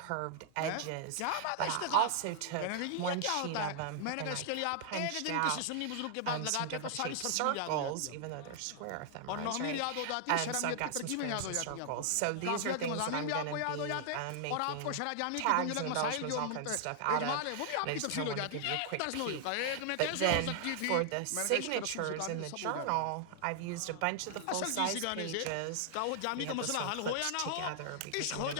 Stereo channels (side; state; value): both; different; correlation 0.00